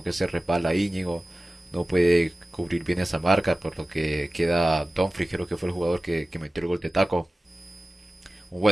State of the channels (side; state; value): both; normal; correlation 0.96